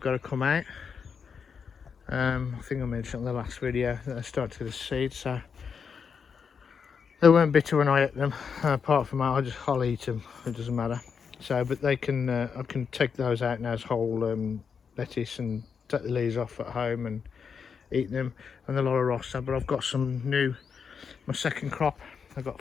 got to come out. I think I mentioned in the last video that I started to get a seed, so they weren't bitter when I ate them. Apart from that, I'll eat them. It doesn't matter. So, but they can, I can take those out now as whole lettuce and take the leaves off at home and eat them. And the Lolla Rossa. But I've got some new, my second crop. I've got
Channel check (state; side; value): quieter; right; 6.3 dB